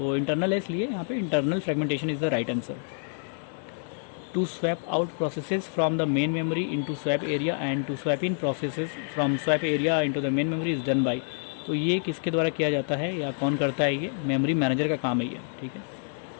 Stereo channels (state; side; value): silent; right; digital silence